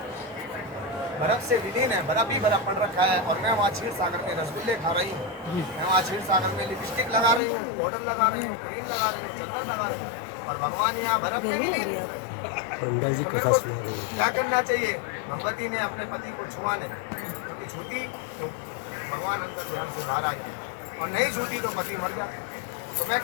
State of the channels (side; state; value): right; drops out; at 7.4 s